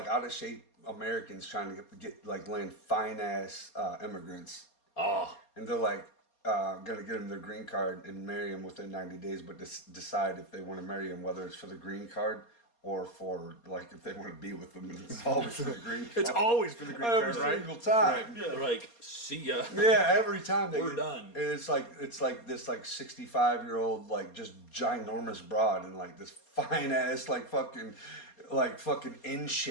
out of shape Americans trying to get like land fine ass immigrants, Oh, and they're like gonna get them their green card and marry them within 90 days, but decide if they want to marry them, whether it's for the green card or for like if they want to be with them. And it's always for the green card. It's always for the green every card, right? single time. they're like, see ya. Yeah, every time We're done. And it's like this like 65-year-old like just ginormous broad and like this fine ass like fucking in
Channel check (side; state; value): right; late; 4.3 ms